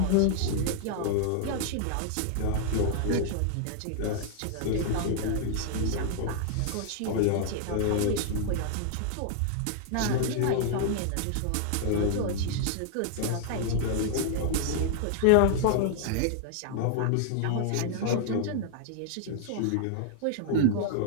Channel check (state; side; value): different; both; correlation -0.01